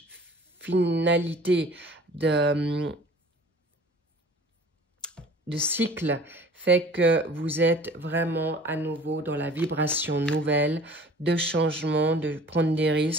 finalité de cycle fait que vous êtes vraiment à nouveau dans la vibration nouvelle, de changement, de prendre des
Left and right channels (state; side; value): normal; both; correlation 0.47